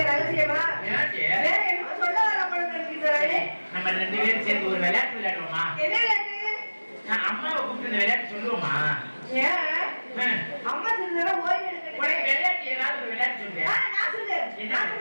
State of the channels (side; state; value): both; inverted; correlation -1.00